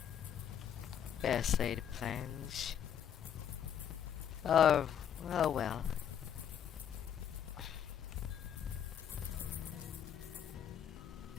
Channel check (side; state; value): right; quieter; 8.9 dB